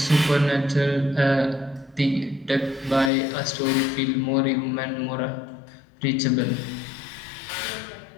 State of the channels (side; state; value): right; drops out; at 3.1 s